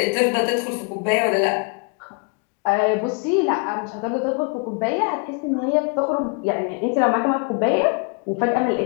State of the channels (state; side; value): quieter; right; 34.8 dB